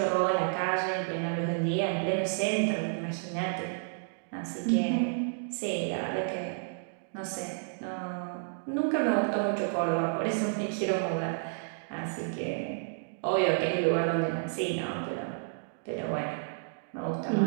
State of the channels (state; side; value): silent; left; digital silence